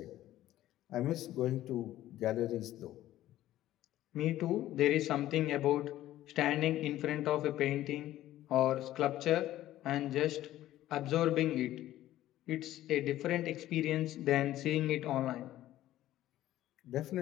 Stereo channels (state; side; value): quieter; right; 14.0 dB